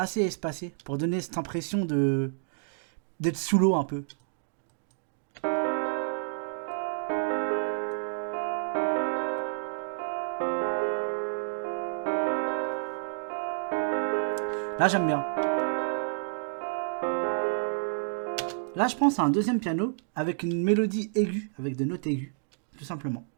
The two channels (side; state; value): left; silent; digital silence